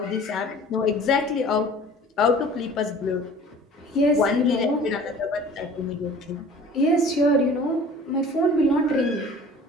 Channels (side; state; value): both; normal; correlation 0.46